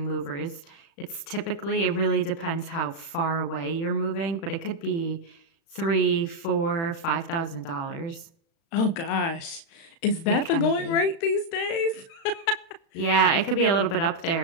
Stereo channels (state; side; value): late; right; 36 ms